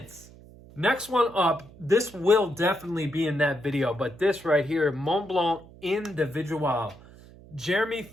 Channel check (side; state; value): right; noise; hum, 21 dB below the sound